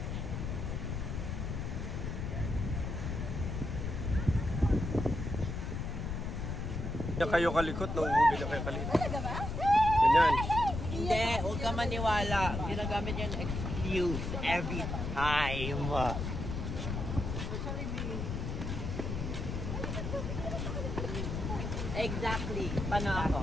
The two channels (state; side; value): noise; left; rumble, 3 dB below the sound